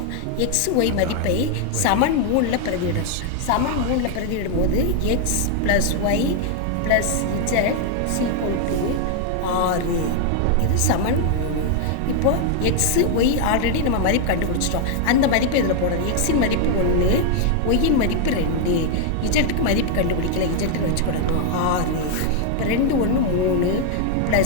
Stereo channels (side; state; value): both; different; correlation 0.00